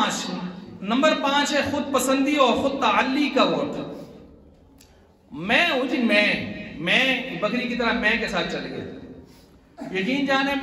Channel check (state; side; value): identical; both; correlation 1.00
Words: 5 ہے خود پسندی اور خود تعلی کا ووٹ۔ میں ہوں جی، میں بکری کی طرح میں کے ساتھ چل گیا، یقین جانے